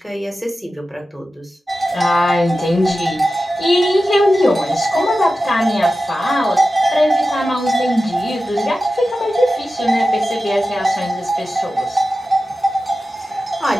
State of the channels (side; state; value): both; normal; correlation 0.93